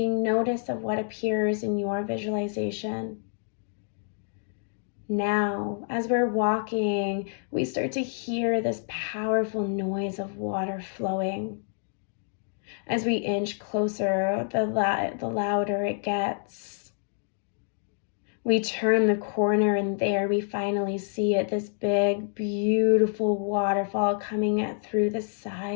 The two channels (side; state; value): right; silent; digital silence